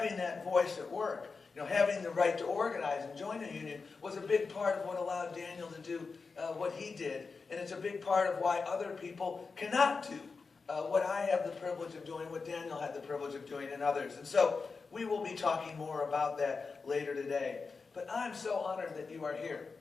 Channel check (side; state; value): right; quieter; 4.6 dB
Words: that voice at work, having the right to organize and join a union was a big part of what allowed Daniel to do what he did. And it's a big part of why other people cannot do what I have the privilege of doing, what Daniel had the privilege of doing, and others. And so we will be talking more about that later today. But I'm so honored that you are here,